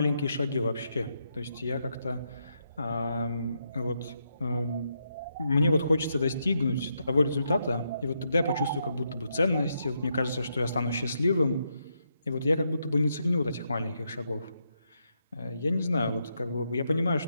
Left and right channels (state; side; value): inverted; both; correlation -0.80